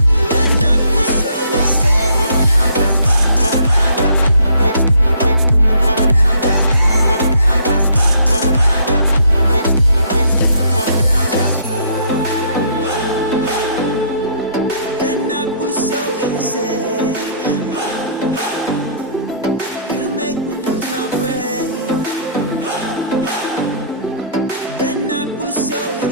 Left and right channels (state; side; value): inverted; both; correlation -0.61